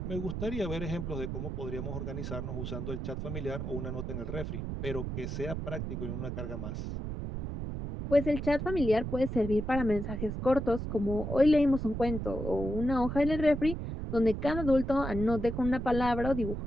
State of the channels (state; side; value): noise; right; rumble, 5 dB below the sound